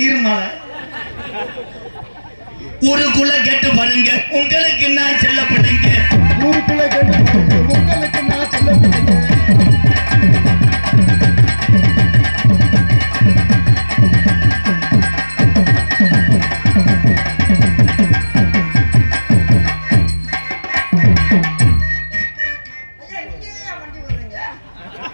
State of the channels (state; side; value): inverted; both; correlation -1.00